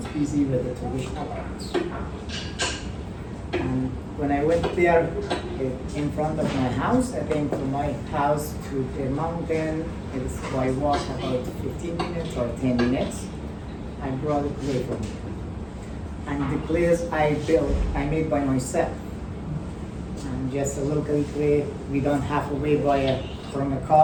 busy with the traditional arts. And when I went there, in front of my house, I think from my house to the mountain, it's by walk about 15 minutes or 10 minutes. I brought a clay from me. And the clays I built, I made by myself. And just a local clay, we don't have to wait from a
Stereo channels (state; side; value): identical; both; correlation 1.00